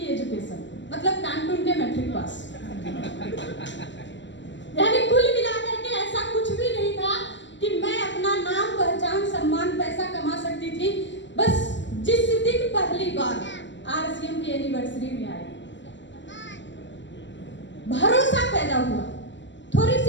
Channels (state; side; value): late; right; 0.53 ms